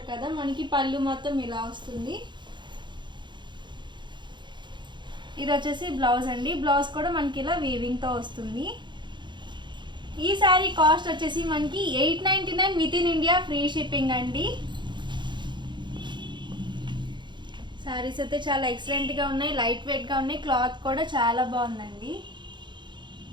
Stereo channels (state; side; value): late; left; 0.22 ms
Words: కదా, మనకి పళ్ళు మొత్తం ఇలా వస్తుంది. ఇది వచ్చేసి బ్లౌజ్ అండి. బ్లౌజ్ కూడా మనకి ఇలా వీవింగ్తో వస్తుంది. ఈ శారీ కాస్ట్ వచ్చేసి మనకి 899 with in India, free shipping అండి. శారీస్ అయితే చాలా ఎక్సలెంట్గా ఉన్నాయి, లైట్ వెయిట్గా ఉన్నాయి. క్లాత్ కూడా చాలా బాగుందండి.